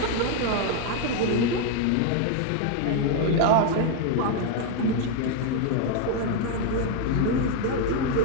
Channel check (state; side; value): different; both; correlation 0.01